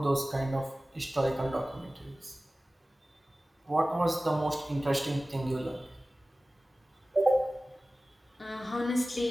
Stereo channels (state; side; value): normal; both; correlation 0.97